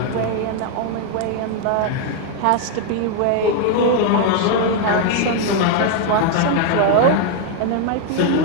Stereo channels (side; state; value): both; different; correlation 0.01